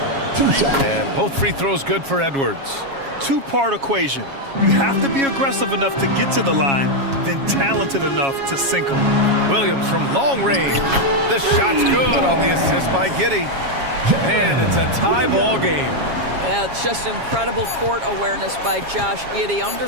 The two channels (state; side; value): late; left; 7.3 ms